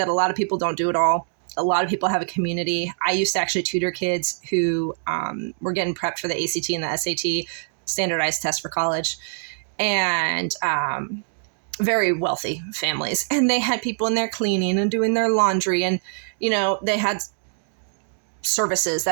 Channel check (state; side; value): silent; left; 63 dB below the other